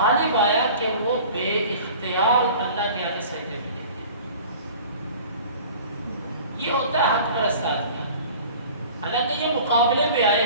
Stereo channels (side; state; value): both; inverted; correlation -0.44